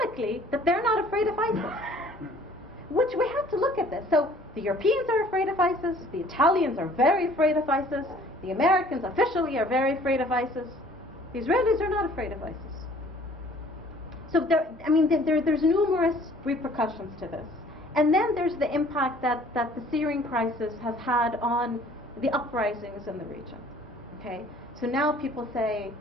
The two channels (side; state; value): both; normal; correlation 0.54